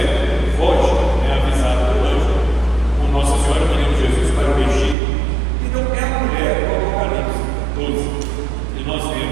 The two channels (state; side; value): drops out; left; at 5.0 s